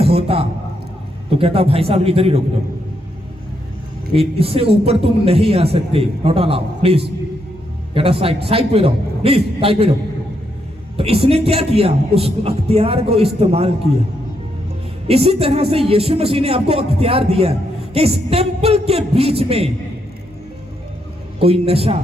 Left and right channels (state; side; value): normal; both; correlation 0.78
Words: होता तो कहता भाई साहब इधर ही रोक दो, इससे ऊपर तुम नहीं आ सकते, नॉट अलाउ, प्लीज कहता साइड पे रहो, प्लीज साइड पे रहो। तो इसने क्या किया? उस अख्तियार को इस्तेमाल किया। इसी तरह से यीशु मसीह ने आपको अख्तियार दिया कि इस टेंपल के बीच में कोई नशा,